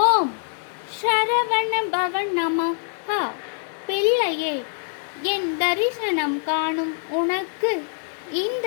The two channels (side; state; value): right; silent; 63 dB below the other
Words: ஓம் சரவண பவன் நமஹ. பிள்ளையே, என் தரிசனம் காணும் உனக்கு இந்த